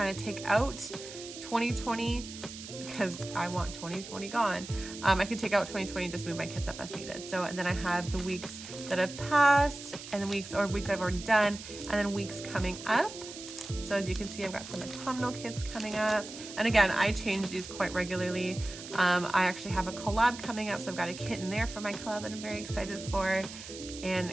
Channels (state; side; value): noise; right; hiss, 12 dB below the sound